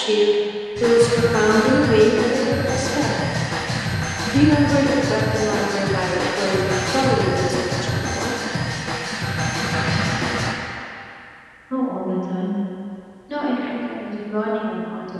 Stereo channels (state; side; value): identical; both; correlation 1.00